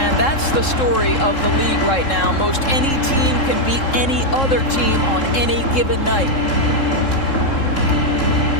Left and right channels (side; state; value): right; late; 3.7 ms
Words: that's the story of the league right now. Most any team can beat any other team on any given night.